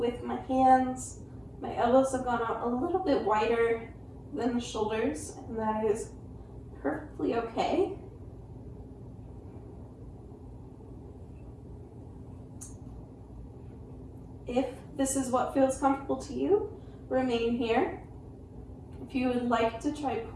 my hands. My elbows have gone out a little bit wider than the shoulders, and that is perfectly okay. If this is what feels comfortable to you, remain here. If you would like to try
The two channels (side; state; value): both; identical; correlation 1.00